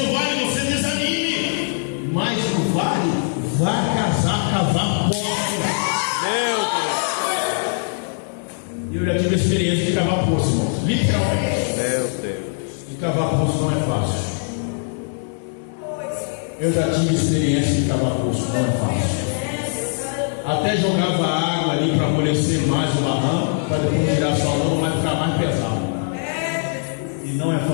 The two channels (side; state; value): right; silent; digital silence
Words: no vale você desanime, mas no vale vai cavar poços. Meu Deus. E eu já tive a experiência de cavar poços, irmãos. Literalmente. Meu Deus. De cavar poços não é fácil. Eu já tive experiência de cavar poços, não é fácil. Até jogava água ali para amolecer mais o barranco, para depois tirar só a lama, vai ficar mais pesado. E não é